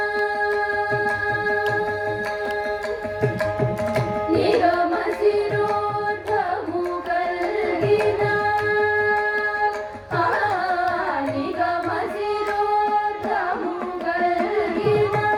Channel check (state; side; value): identical; both; correlation 1.00